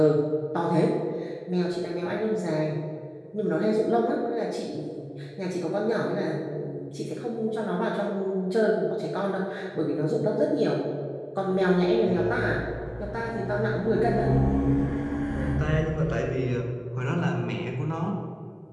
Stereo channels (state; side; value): identical; both; correlation 1.00